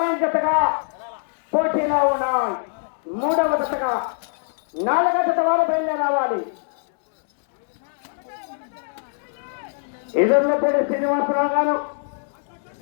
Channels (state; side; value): silent; right; digital silence